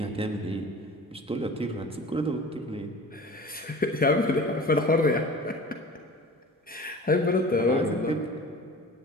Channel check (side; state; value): both; normal; correlation 0.40